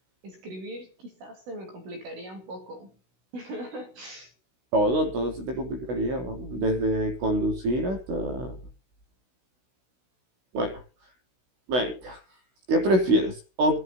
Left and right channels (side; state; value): left; late; 16 ms